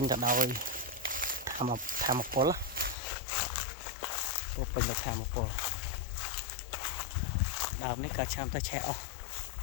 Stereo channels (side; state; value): right; drops out; at 3.0 s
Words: ទៅដោយធម្មពលពោពេញដោយធម្មពលដើមនេះក៏ឆ្នាំទៅឆេះអស់